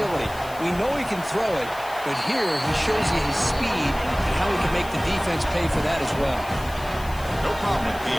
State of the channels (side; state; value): left; noise; hiss, 18 dB below the sound